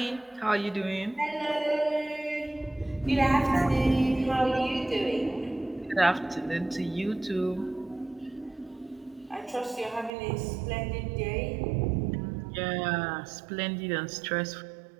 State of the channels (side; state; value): left; drops out; at 10.1 s